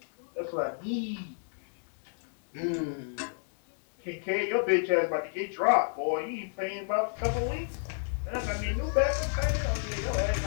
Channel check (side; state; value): right; silent; digital silence